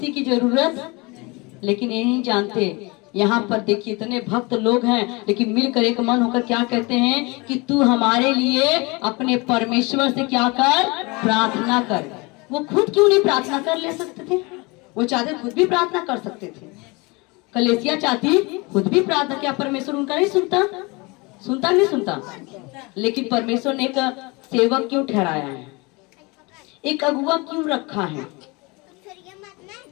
की जरूरत। लेकिन ये नहीं जानते, यहाँ पर देखिए इतने भक्त लोग हैं, लेकिन मिलकर एक मन होकर क्या कहते हैं कि तू हमारे लिए अपने परमेश्वर से क्या कर? प्रार्थना कर। वो खुद क्यों नहीं प्रार्थना कर ले सकते थे? वो चाहते खुद भी प्रार्थना कर सकते थे। कलीसिया चाहती खुद भी प्रार्थना, क्या परमेश्वर उनका नहीं सुनता? लेकिन परमेश्वर ने एक सेवक क्यों ठहराया है, एक अगुआ क्यों रखा है?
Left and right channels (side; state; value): right; quieter; 26.4 dB